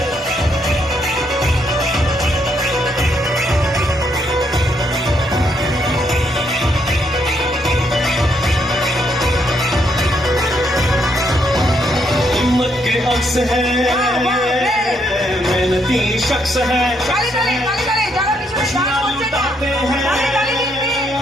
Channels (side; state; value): both; normal; correlation 0.74